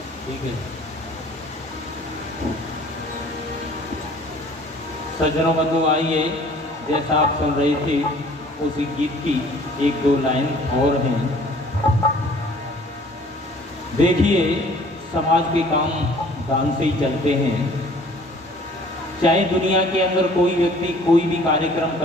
ठीक है। सज्जनों बंधु आइए, जैसा आप सुन रहे थे उसी गीत की 1-2 लाइन और हैं। देखिए, समाज के काम दान से ही चलते हैं। चाहे दुनिया के अंदर कोई व्यक्ति कोई भी कार्यक्रम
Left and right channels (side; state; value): both; normal; correlation 0.52